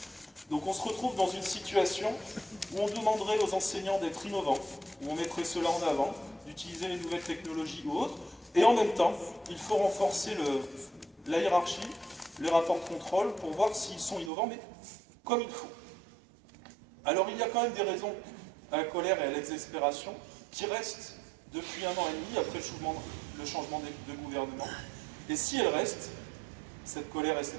Donc on se retrouve dans une situation où on demanderait aux enseignants d'être innovants, où on mettrait cela en avant, d'utiliser les nouvelles technologies ou autres, et en même temps, il faut renforcer la hiérarchie, les rapports de contrôle pour voir s'ils sont innovants, mais comme il faut. Alors il y a quand même des raisons à la colère et à l'exaspération qui restent depuis 1 an et demi après le changement de gouvernement. Et si elles restent, cette colère et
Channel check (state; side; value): drops out; left; at 14.3 s